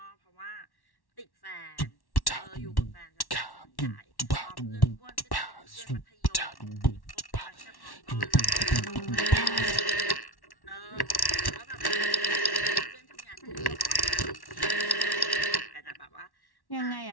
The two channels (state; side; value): late; right; 1.1 ms